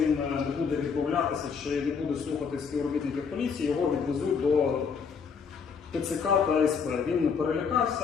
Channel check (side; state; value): right; quieter; 5.9 dB